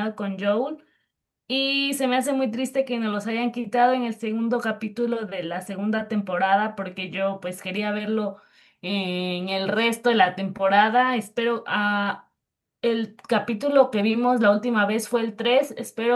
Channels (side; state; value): both; identical; correlation 1.00